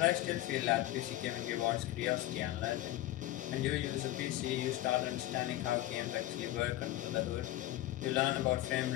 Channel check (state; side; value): quieter; right; 15.5 dB